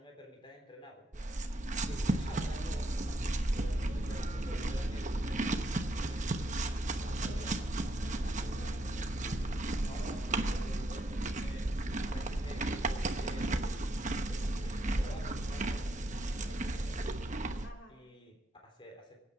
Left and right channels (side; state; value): both; normal; correlation 0.77